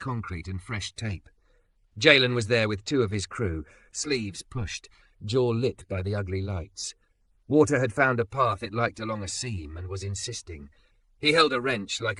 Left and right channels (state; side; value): identical; both; correlation 1.00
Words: and fresh tape. Jalen was there with 2 of his crew, sleeves pushed, jaw lit by the ugly lights. Water had found a path it liked along a seam and was insisting. He held a wrench like